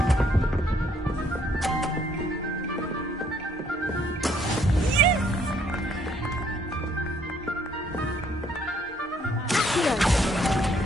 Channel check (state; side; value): normal; both; correlation 0.66